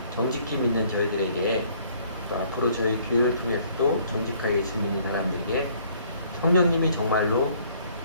정직히 믿는 저희들에게 또 앞으로 저희 교회를 통해서도 정직하게 예수 믿는 사람들에게 성령님이 정말로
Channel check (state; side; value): inverted; both; correlation -0.61